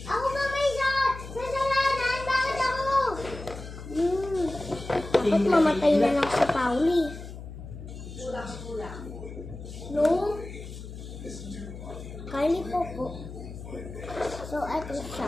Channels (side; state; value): left; noise; hum, 11 dB below the sound